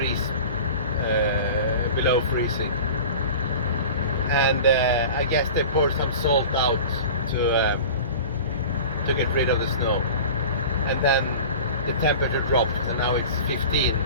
below freezing. And I guess they poured some salt out to get rid of the snow, and then the temperature dropped, and now it's 15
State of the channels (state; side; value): inverted; both; correlation -0.36